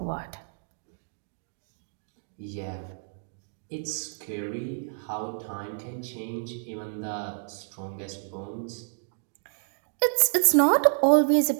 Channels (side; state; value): left; silent; digital silence